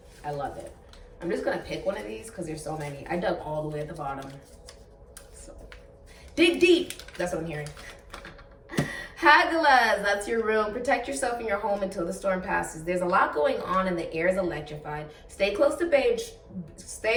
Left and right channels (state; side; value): identical; both; correlation 1.00